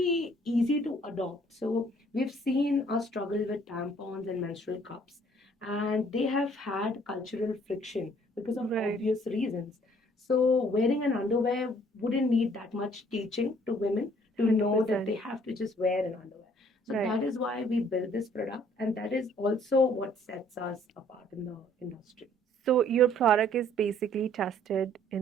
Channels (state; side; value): normal; both; correlation 0.60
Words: easy to adopt. So we've seen a struggle with tampons and menstrual cups, and they have had cultural friction because of Right. obvious reasons. So wearing an underwear wouldn't need that much teaching to women to know that they 100%. have to just wear an underwear. So Right. that is why we built this product, and that is also what sets us apart in the industry. So, your product is basically tested